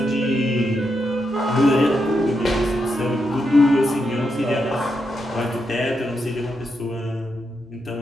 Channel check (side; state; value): both; normal; correlation 0.84